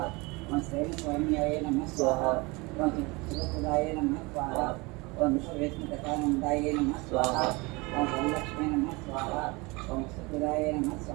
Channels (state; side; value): quieter; left; 25.6 dB